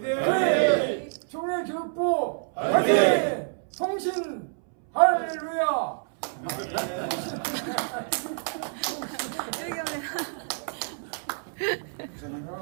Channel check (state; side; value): silent; left; 60 dB below the other